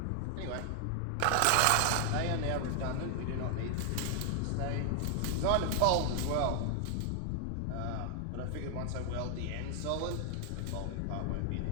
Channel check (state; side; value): different; both; correlation 0.00